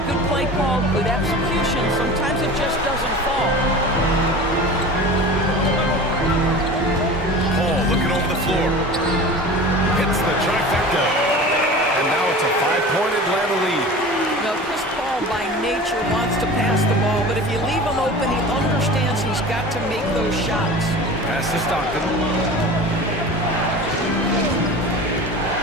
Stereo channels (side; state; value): both; normal; correlation 0.36